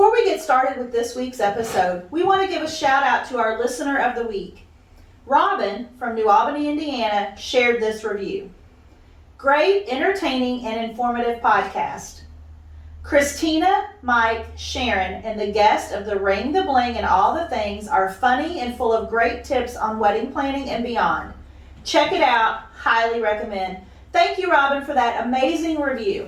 we get started with this week's episode, we want to give a shout out to our listener of the week. Robin from New Albany, Indiana, shared this review. Great, entertaining, and informative podcast. Kristina, Mike, Sharon, and the guest of the Ring, the Bling, and All the Things are funny and full of great tips on wedding planning and beyond. Check it out. Highly recommend. Thank you, Robin, for that amazing review.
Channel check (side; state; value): both; identical; correlation 1.00